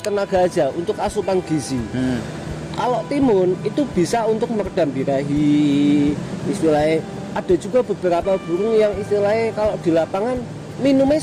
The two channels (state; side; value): identical; both; correlation 1.00